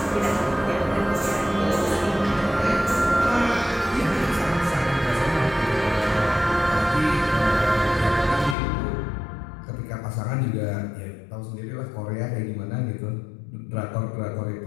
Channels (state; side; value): drops out; right; at 8.6 s